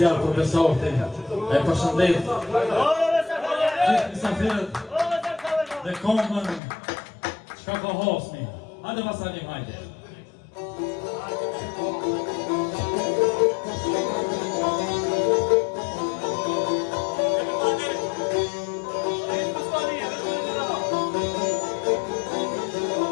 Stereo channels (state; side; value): drops out; right; at 6.6 s